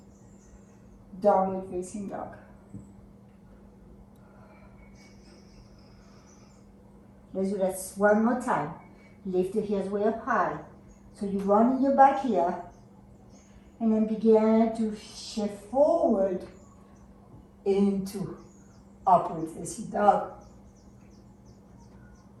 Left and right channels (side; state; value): both; identical; correlation 1.00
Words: Downward facing dog. Let's do that one more time. Lift the heels way up high. So you run in your back here. And then begin to shift forward into upward facing dog.